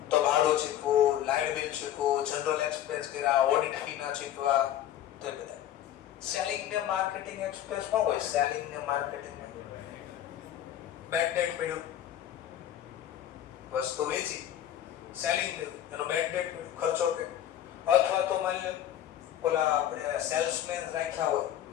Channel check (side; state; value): right; quieter; 11.5 dB